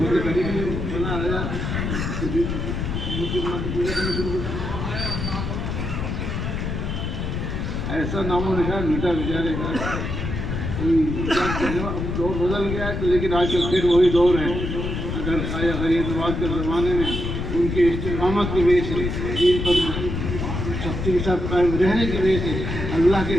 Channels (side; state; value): left; noise; rumble, 3 dB below the sound